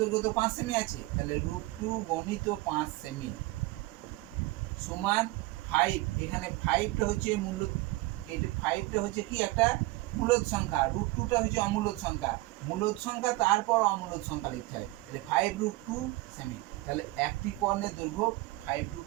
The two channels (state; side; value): quieter; left; 20.4 dB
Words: তো 5 সেমি আছে, তাহলে √2 গণিত 5 সেমি সমান 5। এখানে 5টা হচ্ছে মূল, এই 5টা হচ্ছে কি একটা মূলদ সংখ্যা, √2টা হচ্ছে অমূলদ সংখ্যা। মূলদ সংখ্যা তারপর অমূলদ সংখ্যা লিখতে হয়, তাহলে 5√2 সেমি। তাহলে একটি কর্ণের দৈর্ঘ্য